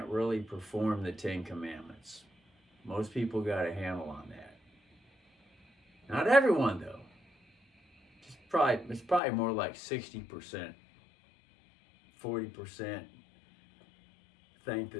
really perform the Ten Commandments. Most people got a handle on that. Not everyone, though. It's probably more like 60%, 40% think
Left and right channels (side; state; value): right; drops out; at 9.2 s